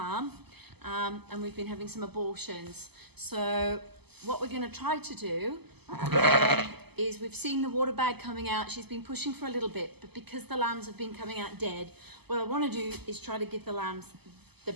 and we've been having some abortions. So what we're going to try to do is we've seen the water bag coming out. She's been pushing for a little bit, but because the lambs have been coming out dead, what I want to do is try to give the lambs the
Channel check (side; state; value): left; late; 0.97 ms